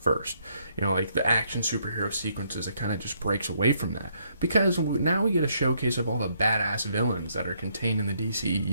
You know, like the action superhero sequences, it kind of just breaks away from that. Because now we get a showcase of all the badass villains that are contained in the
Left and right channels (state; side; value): inverted; both; correlation -0.72